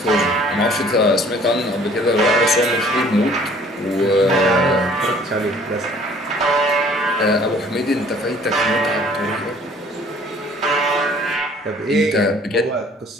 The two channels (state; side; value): normal; both; correlation 0.55